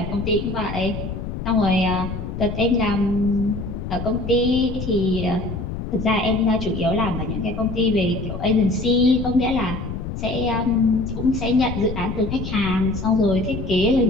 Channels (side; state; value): left; noise; rumble, 6 dB below the sound